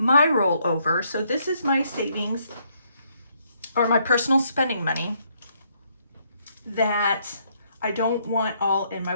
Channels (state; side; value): inverted; both; correlation -0.71